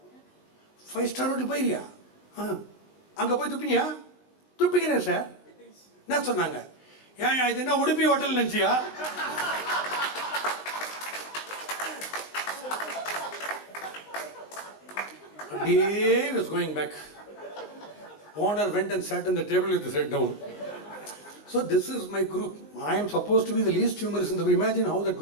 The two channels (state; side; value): late; right; 19 ms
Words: 5-star hotel போய்கிறியா? அங்கே போய் துப்பினியா? துப்பிக்கிறேன் sir. என்ன சொன்னாங்க? ஏன் இது என்ன உடுப்பி ஹோட்டல் நினச்சியா? அப்படியே was going back. Owner went and sat on the table with his head down. So this is my group. I am supposed to be the least humorous in the group. Imagine how that